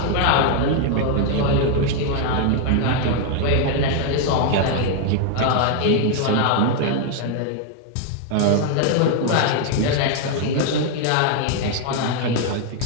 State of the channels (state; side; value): different; both; correlation 0.00